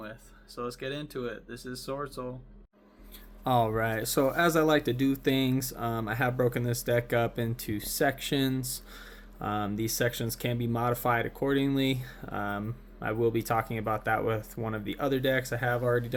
So let's get into it. This is Swordsoul. All right, so as I like to do things, I have broken this deck up into sections. These sections can be modified accordingly. I will be talking about that with one of the other decks I have already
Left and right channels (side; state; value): both; identical; correlation 1.00